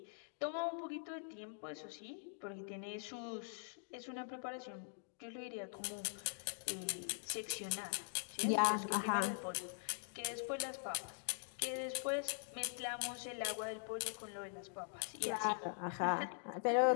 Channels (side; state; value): right; silent; digital silence